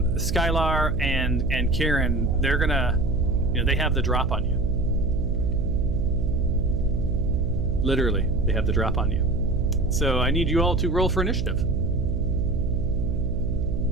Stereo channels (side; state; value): right; noise; hum, 1 dB below the sound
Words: and Kieran. They're gonna, they have the drop on you. Literally, they have the drop on you. So I need you all to roll for initiative.